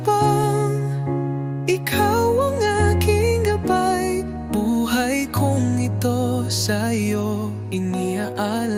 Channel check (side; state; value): both; identical; correlation 1.00